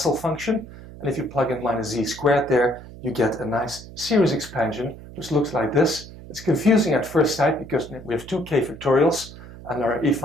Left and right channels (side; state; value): right; noise; hum, 16 dB below the sound